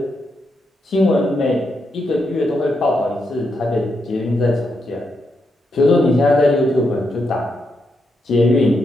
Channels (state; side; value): normal; both; correlation 0.82